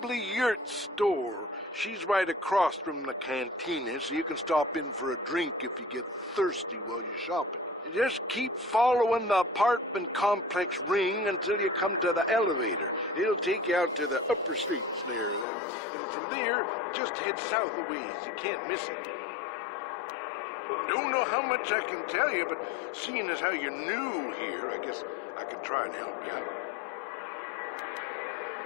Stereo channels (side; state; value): right; drops out; at 15.5 s